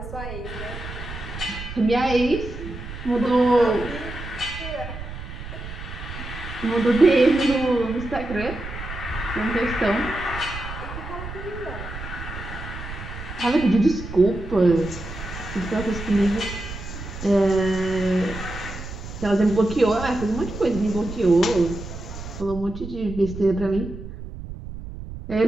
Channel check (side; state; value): right; noise; rumble, 10 dB below the sound